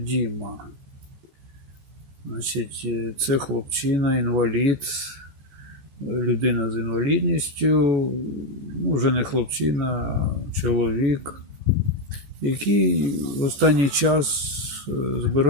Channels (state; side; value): late; left; 14 ms